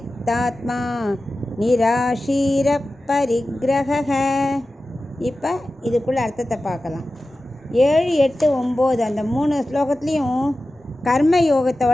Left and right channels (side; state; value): both; normal; correlation 0.94